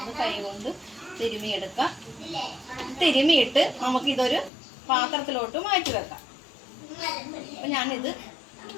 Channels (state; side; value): drops out; right; at 4.5 s